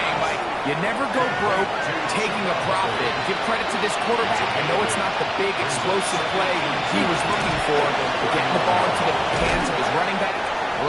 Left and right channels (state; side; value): identical; both; correlation 1.00